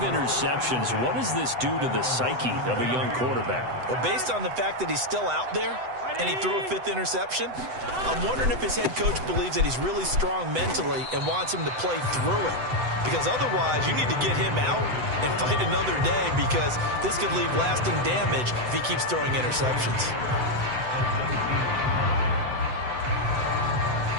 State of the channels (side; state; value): left; late; 7.9 ms